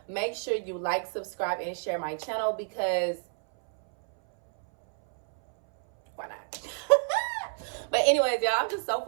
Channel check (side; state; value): left; silent; 59 dB below the other